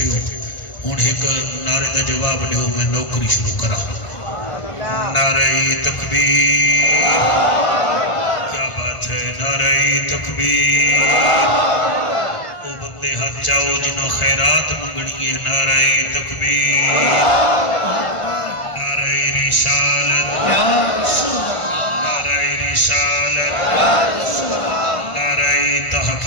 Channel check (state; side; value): late; right; 1.5 ms